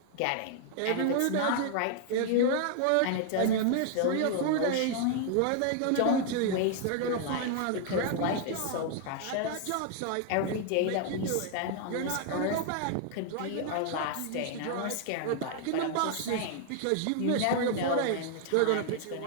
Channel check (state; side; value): different; both; correlation 0.00